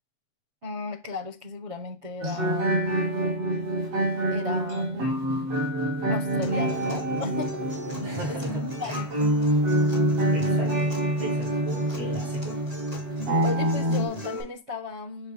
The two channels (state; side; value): late; left; 7.5 ms